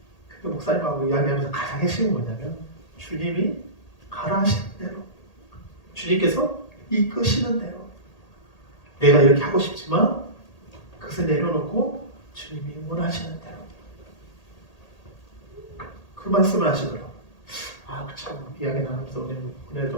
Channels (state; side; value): late; right; 1.8 ms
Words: 근데 목사님하고 이야기하면서 가장 핵심은 뭐냐면 주님이 가라 하시는 대로 주님께서 이끄시는 대로 내가 이렇게 하고 싶지만 그것을 내려놓고 주님이 원하시는 대로 그 말씀을 하시더라고요. 참 이야기 나누면서